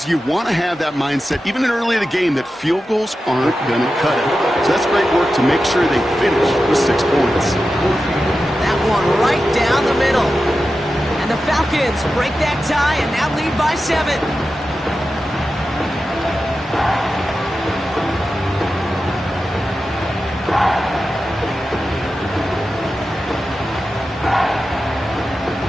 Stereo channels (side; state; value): both; normal; correlation 0.92